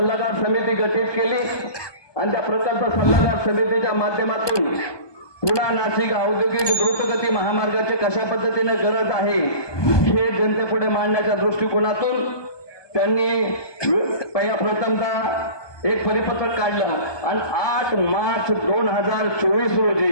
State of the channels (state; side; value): late; right; 1.2 ms